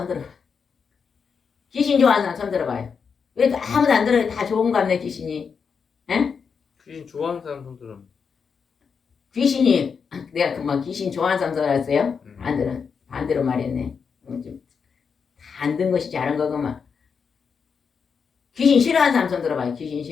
들어봐요. 귀신 좋아하는 사람 손 들어봐요. 왜 아무도 안 들어요? 다 좋은가 보네 귀신이. 에? 귀신 좋아하는 사람 손 들어. 귀신이 내가 그만 귀신 좋아하는 사람 들어왔어요? 안 들어. 반대로 말했네. 다 안 든 것이 잘한 거구만. 귀신 싫어하는 사람 손 들어봐요. 귀신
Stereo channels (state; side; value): quieter; right; 6.0 dB